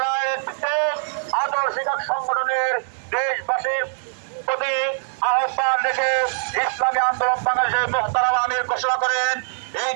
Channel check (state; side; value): silent; left; digital silence